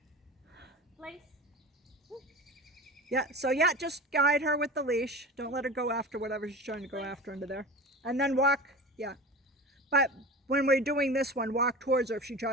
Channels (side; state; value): both; normal; correlation 0.32